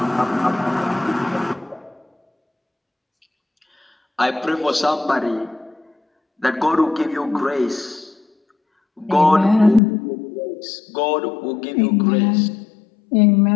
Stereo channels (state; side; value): drops out; right; at 9.8 s